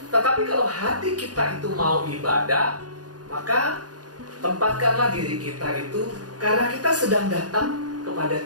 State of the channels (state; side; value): late; left; 0.69 ms